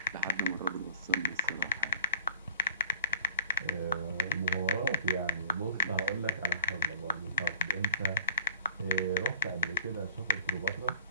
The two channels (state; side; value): inverted; both; correlation -0.40